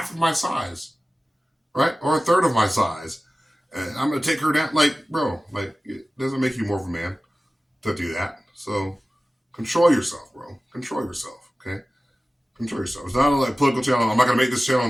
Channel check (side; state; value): both; normal; correlation 0.96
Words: of my size, right, or a third of my size, and I'm going to take her down." Like, bro, like it doesn't make you more of a man to do that. So control yourself, bro. Control yourself. Okay, control yourself. It's not a like political channel. I'm not gonna make this channel